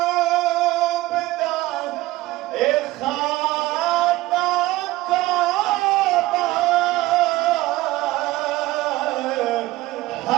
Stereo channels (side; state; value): left; quieter; 18.0 dB